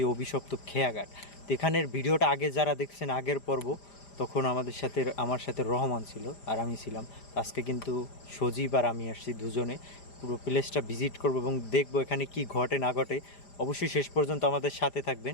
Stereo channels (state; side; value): late; right; 5.0 ms